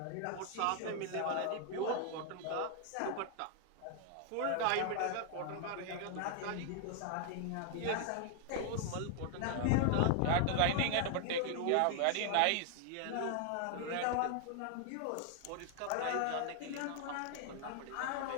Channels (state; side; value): different; both; correlation 0.00